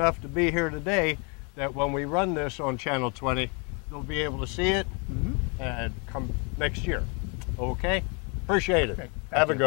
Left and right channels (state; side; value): quieter; right; 34.1 dB